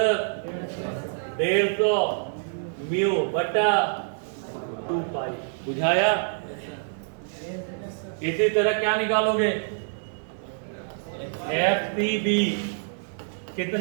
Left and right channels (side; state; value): left; silent; 61 dB below the other